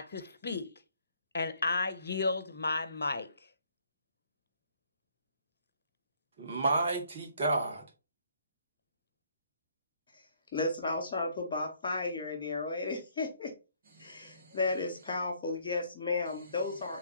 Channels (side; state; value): both; inverted; correlation -0.65